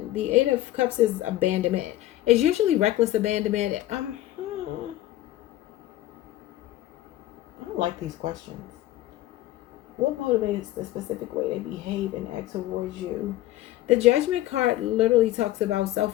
The Eight of Cups is abandonment. It's usually reckless abandonment. I don't like these questions. What motivates the specific way they behave and act towards you? The Judgment card literally talks about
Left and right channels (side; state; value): right; quieter; 15.0 dB